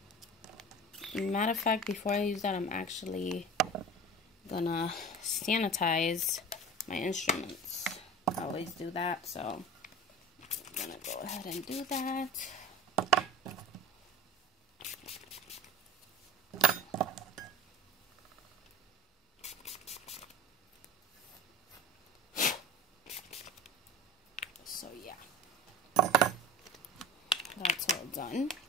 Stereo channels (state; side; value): normal; both; correlation 0.36